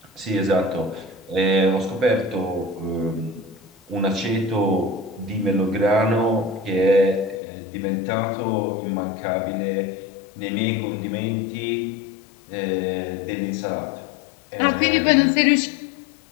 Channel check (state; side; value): drops out; right; at 7.4 s